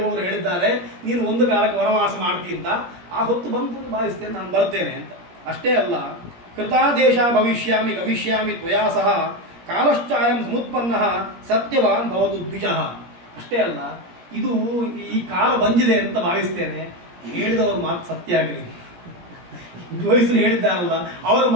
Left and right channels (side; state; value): left; late; 17 ms